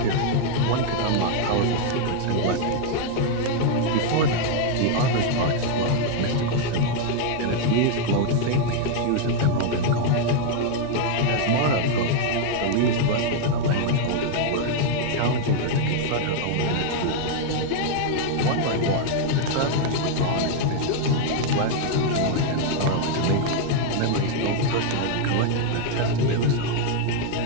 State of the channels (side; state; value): both; different; correlation 0.00